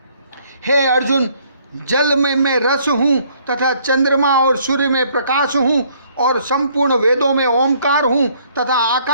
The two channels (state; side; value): inverted; both; correlation -0.63